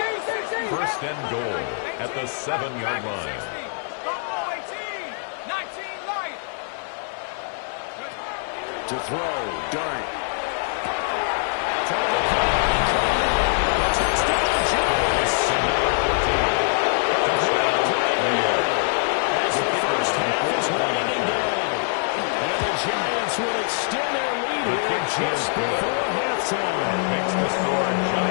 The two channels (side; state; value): right; silent; 56 dB below the other